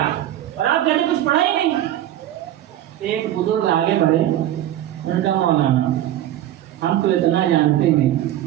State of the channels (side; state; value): left; quieter; 12.7 dB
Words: اور آپ کہتے کچھ پڑھا ہی نہیں۔ ایک بزرگ آگے بڑھے، انہوں نے کہا مولانا ہم تو اتنا جانتے ہیں